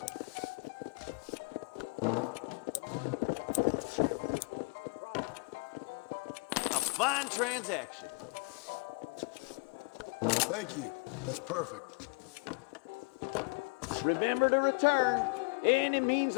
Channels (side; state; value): right; quieter; 33.8 dB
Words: A fine transaction. Thank you. That's perfect. Remember to return. Any means